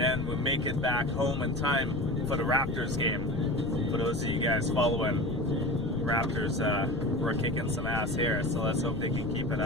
we'll make it back home in time for the Raptors game. For those of you guys following, Raptors were kicking some ass here, so let's hope they can keep it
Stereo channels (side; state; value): left; noise; rumble, 9 dB below the sound